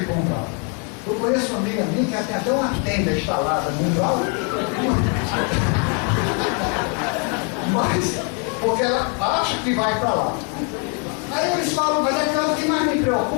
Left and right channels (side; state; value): right; quieter; 38.0 dB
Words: para o umbral. Eu conheço uma amiga minha que tem até uma tenda instalada no umbral, mas porque ela acha que vai para lá. Aí eles falam, mas o que mais me